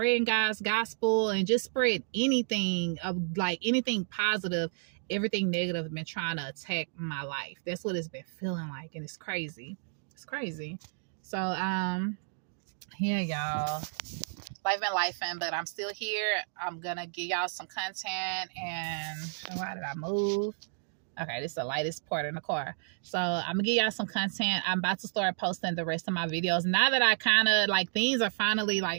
God's gospel and just spread anything of like anything positive, everything negative has been trying to attack my life. That's what it's been feeling like, and it's crazy. It's crazy. So yeah, y'all, life and but I'm still here. I'm gonna give y'all some content. And why did I move? Okay, this is the lightest part in the car. So I'm gonna give y'all some content. I'm about to start posting the rest of my videos now that I kind of like things are finally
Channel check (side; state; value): left; silent; digital silence